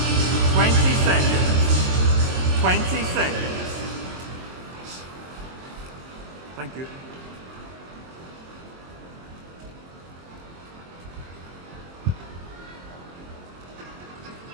seconds. 20 seconds. Thank you.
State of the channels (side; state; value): left; late; 23 ms